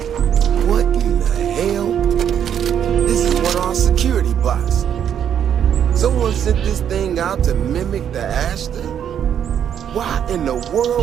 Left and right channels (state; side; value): quieter; left; 9.1 dB